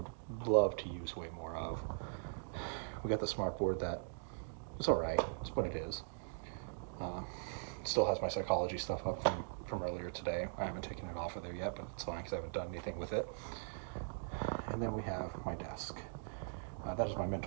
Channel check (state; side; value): silent; left; digital silence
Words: love to use way more of. We got the smart board that it's all right. It's what it is. Still has my psychology stuff up from earlier today. I haven't taken it off of there yet, but it's fine because I haven't done anything with it. And then we have my desk. That is my